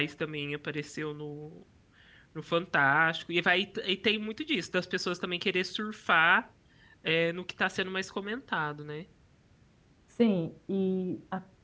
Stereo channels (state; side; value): identical; both; correlation 1.00